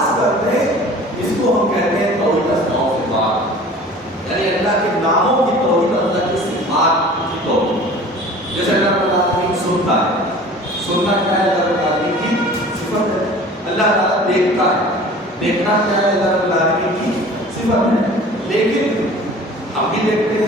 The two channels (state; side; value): normal; both; correlation 0.44